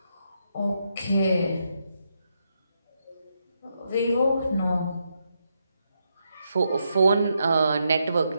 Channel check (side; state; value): both; inverted; correlation -0.81